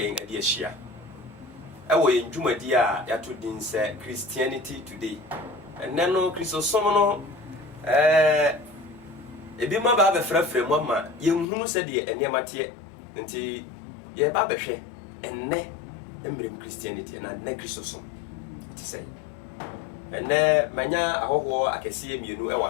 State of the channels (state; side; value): drops out; right; at 11.5 s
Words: ade ahia ewo yen dwumadi a yato din se Christianity Today enne no Christosom no ebi ma ba befrafra mu ama yenhunu se de eniamate nti ye ba behwe enne embrem Christianity na ne Christosom ti say enne manya ahoho akese mienu e wa